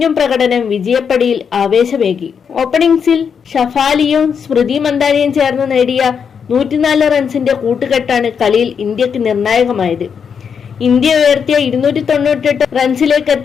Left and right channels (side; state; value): right; quieter; 6.8 dB